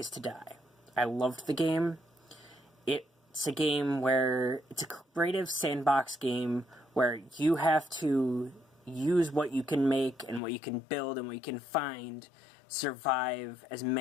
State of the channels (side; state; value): right; drops out; at 10.4 s